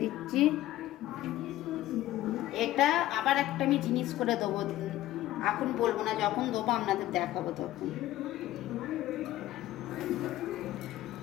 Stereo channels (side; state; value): right; quieter; 14.9 dB